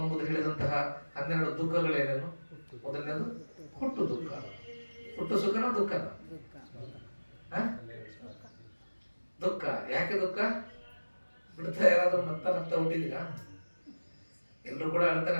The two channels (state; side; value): inverted; both; correlation -1.00